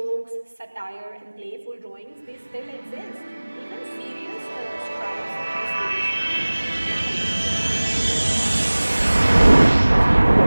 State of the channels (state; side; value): inverted; both; correlation -1.00